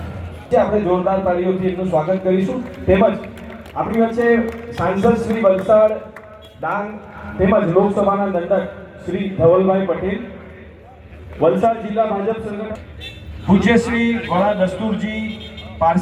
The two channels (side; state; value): both; identical; correlation 1.00